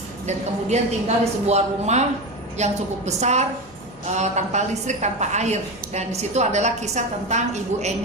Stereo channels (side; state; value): both; normal; correlation 0.20